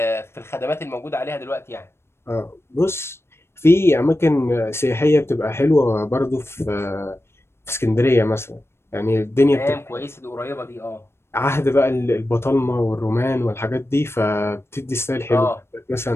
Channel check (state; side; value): late; right; 0.12 ms